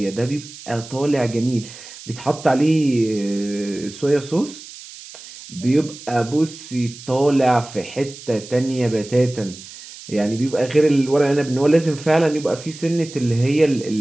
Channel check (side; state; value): right; noise; hiss, 16 dB below the sound